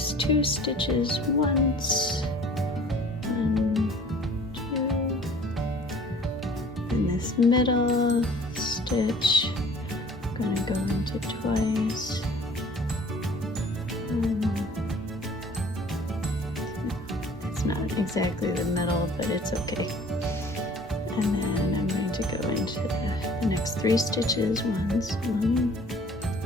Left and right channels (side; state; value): both; normal; correlation 0.50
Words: 2 stitches once, 1, 2, and this middle stitch I'm going to go into twice, it's not exactly the middle, but it's okay. And then I'm going to go into the next 3 stitches once, 1,